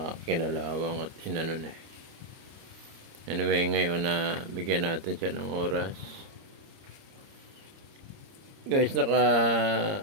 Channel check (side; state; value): left; late; 30 ms